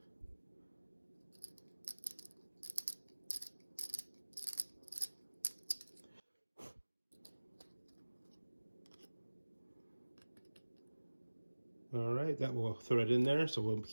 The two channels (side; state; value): both; inverted; correlation -1.00